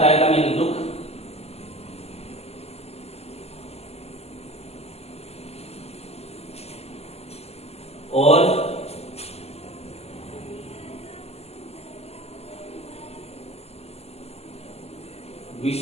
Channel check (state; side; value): late; right; 0.30 ms